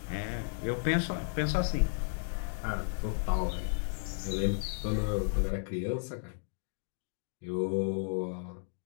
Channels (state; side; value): silent; right; digital silence